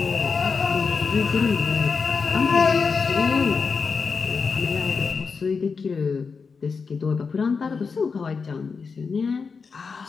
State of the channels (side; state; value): right; quieter; 5.1 dB